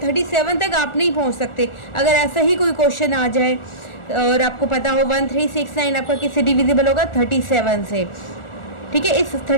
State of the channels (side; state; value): right; late; 1.4 ms